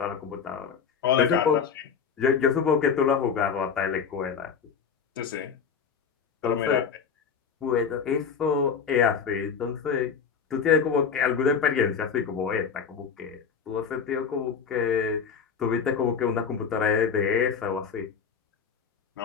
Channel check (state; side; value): quieter; right; 6.5 dB